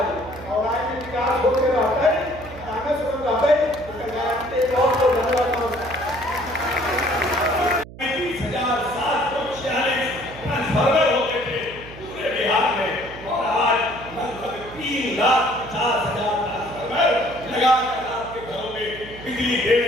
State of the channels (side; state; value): right; noise; hum, 16 dB below the sound